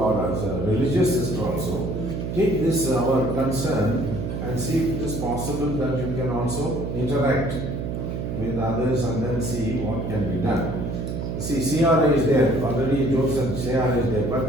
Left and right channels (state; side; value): noise; right; hum, 4 dB below the sound